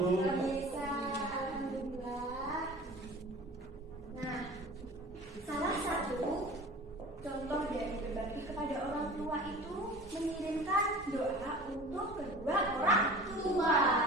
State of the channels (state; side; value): normal; both; correlation 0.40